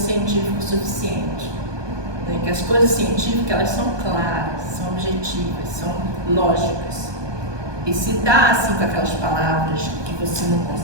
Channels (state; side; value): late; left; 1.2 ms